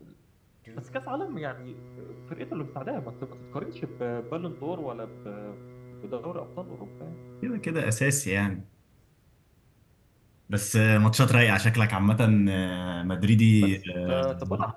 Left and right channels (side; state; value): both; identical; correlation 1.00